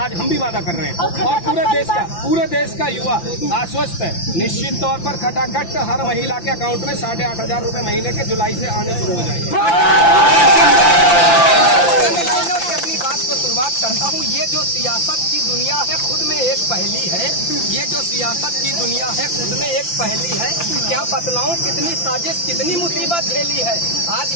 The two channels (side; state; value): right; late; 5.9 ms